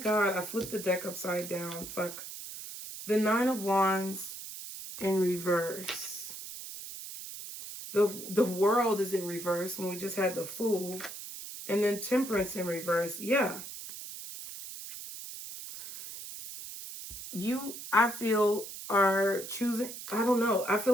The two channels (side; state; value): right; noise; hiss, 10 dB below the sound